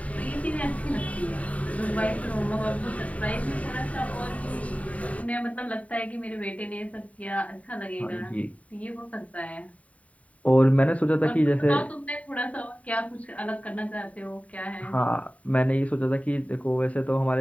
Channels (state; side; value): late; right; 0.068 ms